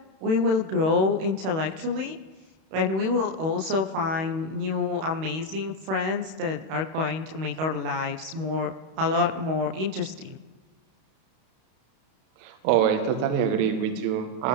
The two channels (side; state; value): left; late; 31 ms